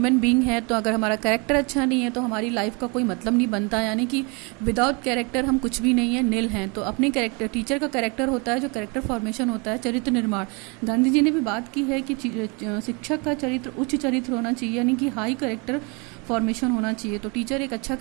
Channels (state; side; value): quieter; left; 31.0 dB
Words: बीइंग हैं तो अगर हमारा कैरेक्टर अच्छा नहीं है तो हमारी लाइफ का कोई मतलब नहीं बनता, यानी कि विदाउट कैरेक्टर हम कुछ भी नहीं है, नील हैं। तो अपने कैरेक्टर, टीचर का कैरेक्टर होता है जो कैरेक्टर फॉर्मेशन होता है, चरित्र निर्माण। गांधी जी ने भी बात की है कि शिक्षक का चरित्र उच्च चरित्र होना चाहिए, यानी कि हाई कैरेक्टर फॉर्मेशन होना चाहिए। तो टीचर एक अच्छा